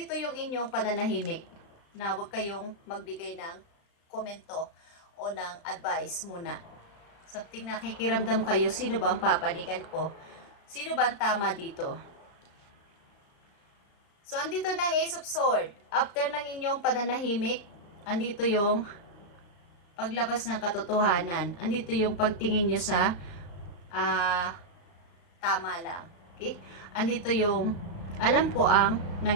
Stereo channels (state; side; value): late; right; 35 ms